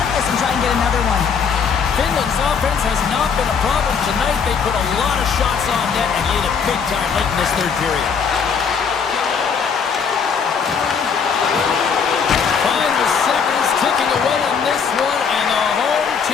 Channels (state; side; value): quieter; right; 6.2 dB